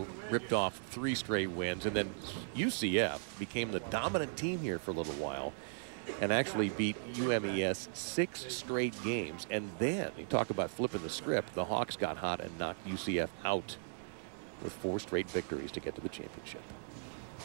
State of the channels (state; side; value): silent; left; digital silence